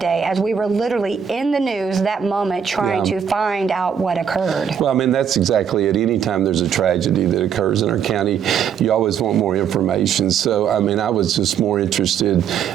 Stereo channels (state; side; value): quieter; left; 7.8 dB